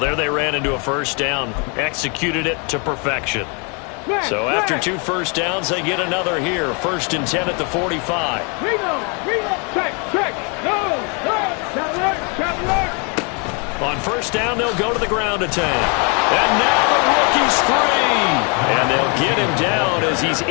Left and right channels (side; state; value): right; quieter; 34.8 dB